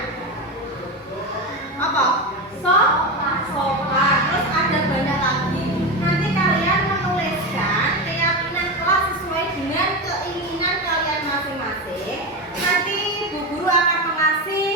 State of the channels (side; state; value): both; normal; correlation 0.18